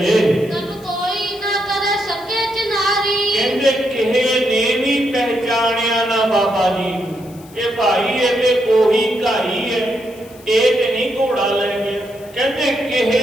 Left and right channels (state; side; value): noise; left; hiss, 24 dB below the sound